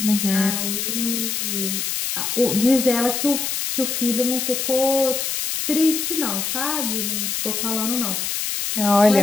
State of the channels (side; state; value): left; noise; hiss, 2 dB below the sound